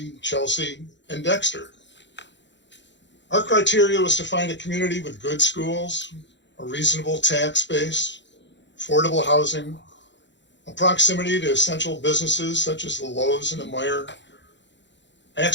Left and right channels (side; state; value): right; late; 0.52 ms